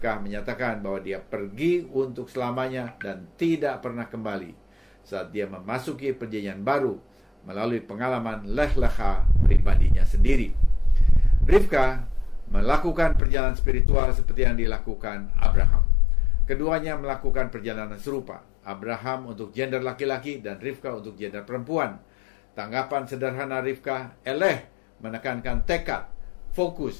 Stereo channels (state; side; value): drops out; right; at 13.2 s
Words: menyatakan bahwa dia pergi untuk selamanya dan tidak pernah kembali saat dia memasuki perjanjian baru melalui pengalaman leh-leha pribadinya sendiri. Rivka melakukan perjalanan spiritual seperti yang dilakukan Abraham. Keduanya melakukan perjalanan serupa. Abraham untuk gender laki-laki dan Rivka untuk gender perempuan. Tanggapan sederhana Rivka, eleh, menekankan tekad,